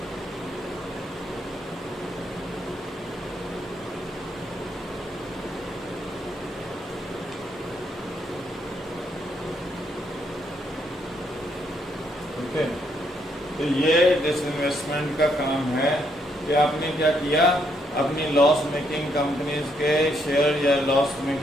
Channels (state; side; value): normal; both; correlation 0.74